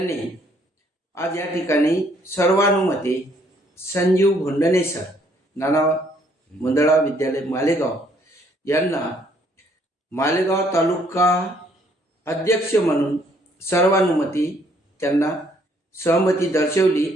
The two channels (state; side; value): normal; both; correlation 0.66